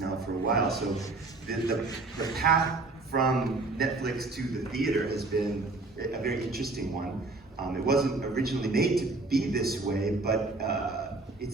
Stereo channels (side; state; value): left; quieter; 3.4 dB